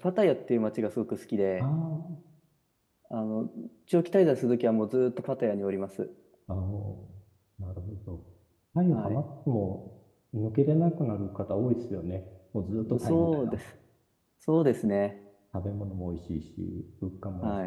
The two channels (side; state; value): both; identical; correlation 1.00